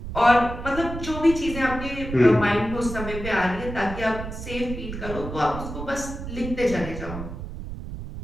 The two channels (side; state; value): right; noise; rumble, 8 dB below the sound